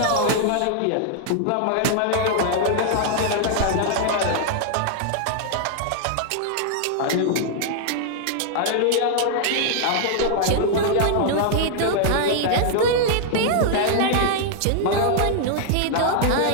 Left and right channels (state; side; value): different; both; correlation -0.01